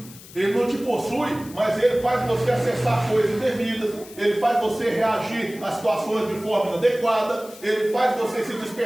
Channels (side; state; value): left; noise; hiss, 19 dB below the sound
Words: Ele não te possui, mas ele faz você acessar coisas indevidas, ele faz você reagir a situações de forma inadequada, ele faz você se